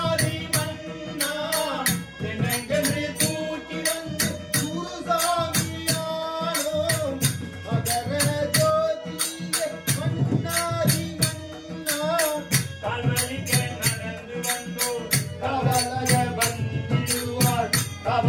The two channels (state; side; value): identical; both; correlation 1.00